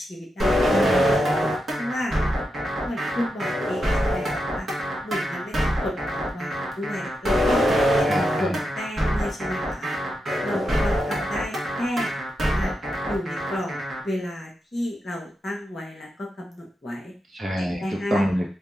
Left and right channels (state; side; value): normal; both; correlation 0.86